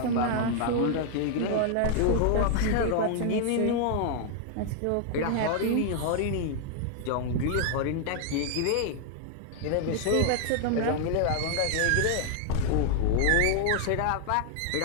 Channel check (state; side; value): different; both; correlation 0.00